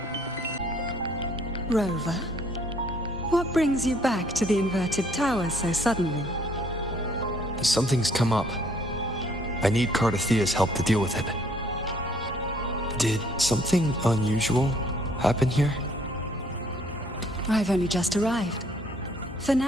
Rover, what brings you back to the inverted tower so suddenly? Something's come up. I need Cardathea's help to deal with it. Did something unusual happen here? I've only just arrived. For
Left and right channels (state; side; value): normal; both; correlation 0.62